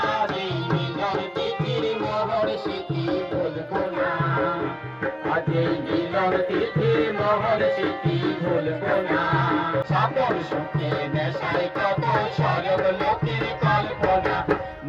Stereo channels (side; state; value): both; identical; correlation 1.00